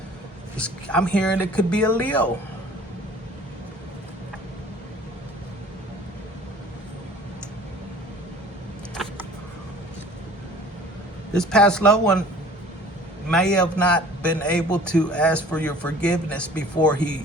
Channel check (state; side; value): normal; both; correlation 0.49